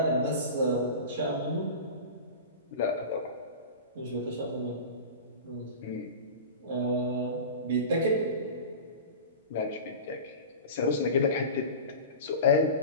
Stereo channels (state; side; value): inverted; both; correlation -0.32